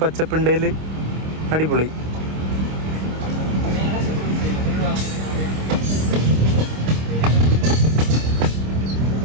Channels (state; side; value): late; left; 26 ms